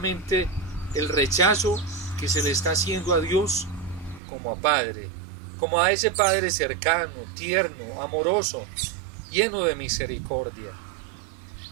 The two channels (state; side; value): drops out; left; at 4.2 s